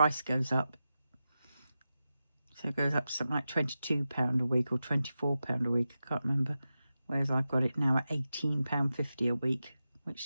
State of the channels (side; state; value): both; inverted; correlation -0.92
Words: goes up. So it goes up to something like £22 a week or £24 a week. I can't remember. Whereas I've got it now at £18.50 a week, which